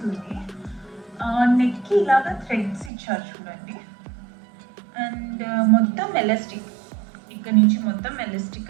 నెక్కి ఇలాగా థ్రెడ్స్ ఇచ్చారు చూడండి. అండ్ మొత్తం ఎలాస్టిక్, ఇక్కడ నుంచి మొత్తం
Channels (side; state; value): left; drops out; at 2.9 s